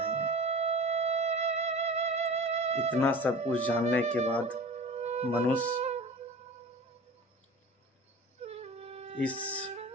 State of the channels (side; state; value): both; normal; correlation 0.37